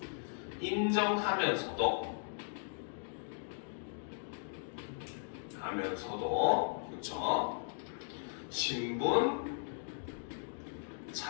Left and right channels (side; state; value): right; silent; digital silence